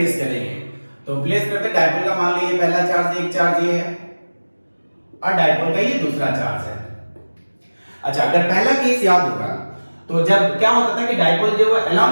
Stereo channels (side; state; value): both; inverted; correlation -1.00